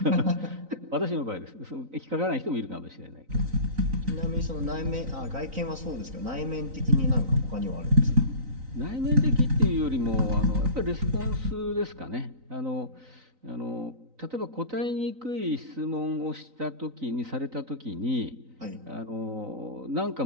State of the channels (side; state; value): left; late; 3.9 ms